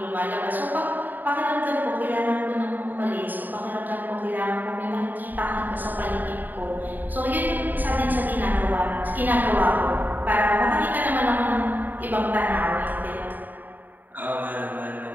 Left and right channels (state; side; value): late; left; 0.088 ms